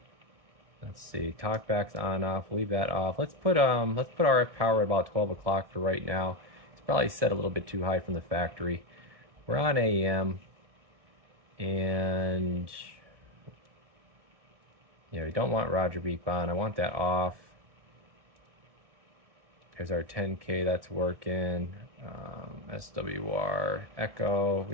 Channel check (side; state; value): left; late; 1.7 ms